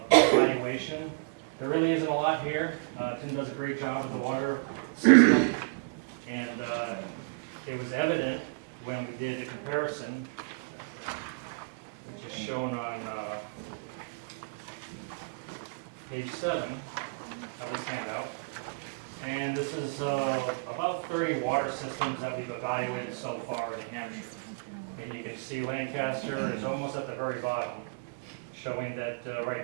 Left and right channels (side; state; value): left; quieter; 36.0 dB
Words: There really isn't a lot here. Tim does a great job with the water system, and it was evident when we did a comparison, which is shown on page 7 of this handout. And this is about 30 water systems that we've evaluated so far in New Hampshire. And you can see Lancaster is almost at the very bottom, showing that right